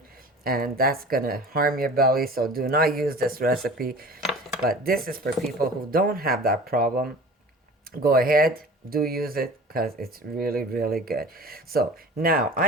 and that's going to harm your belly. So do not use this recipe. But this is for people who don't have that problem. Go ahead, do use it, because it's really, really good. So now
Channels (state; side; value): normal; both; correlation 0.41